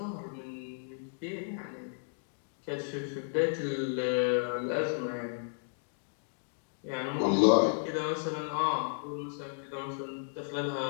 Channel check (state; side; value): silent; right; digital silence